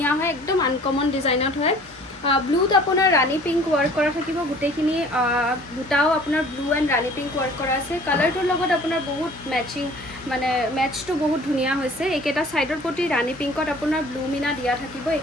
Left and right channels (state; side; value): normal; both; correlation 0.50